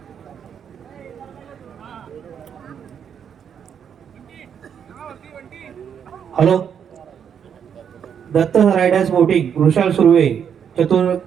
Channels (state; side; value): quieter; left; 7.9 dB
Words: Hello, Datta riders boating Vrushal Surve